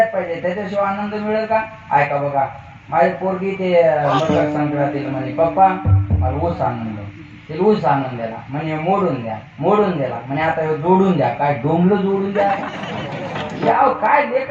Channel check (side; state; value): both; identical; correlation 1.00